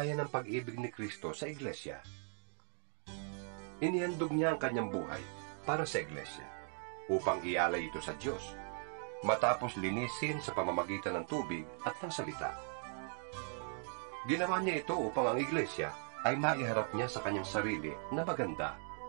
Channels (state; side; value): silent; left; 52 dB below the other